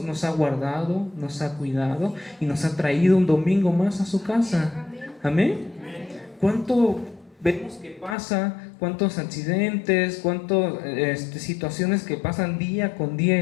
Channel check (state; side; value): drops out; right; at 8.2 s